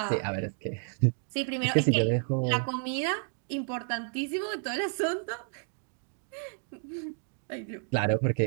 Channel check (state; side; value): silent; left; 57 dB below the other